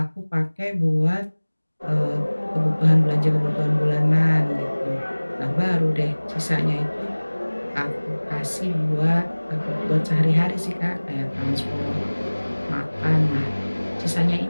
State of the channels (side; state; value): both; inverted; correlation -1.00